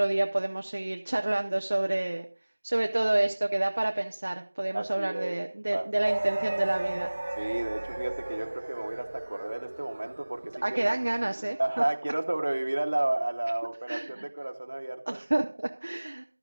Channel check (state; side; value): inverted; both; correlation -1.00